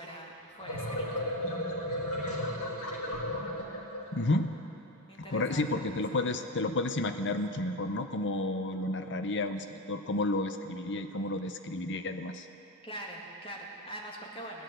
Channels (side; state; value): both; normal; correlation 0.18